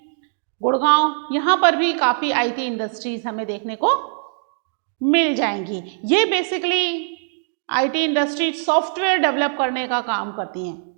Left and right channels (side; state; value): left; silent; digital silence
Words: गुड़गांव, यहाँ पर भी काफ़ी आईटी इंडस्ट्रीज हमें देखने को मिल जाएंगी. ये basically IT industry software develop करने का काम करती हैं,